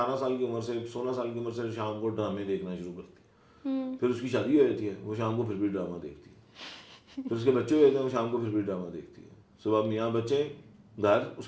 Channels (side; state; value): both; identical; correlation 1.00